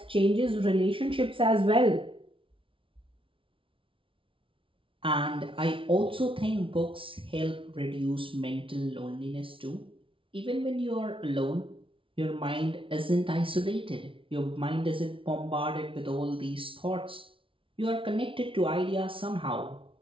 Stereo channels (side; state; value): left; late; 0.25 ms